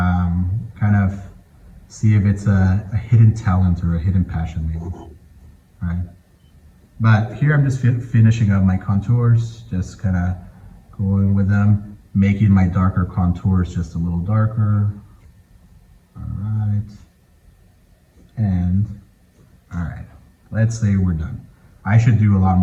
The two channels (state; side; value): identical; both; correlation 1.00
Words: of see if it's a hidden talent or a hidden passion maybe. All right. But here I'm just finishing up my contours, just kind of going with them, making my darker contours just a little darker. All right. And all right, let's say we're done. I should do a lot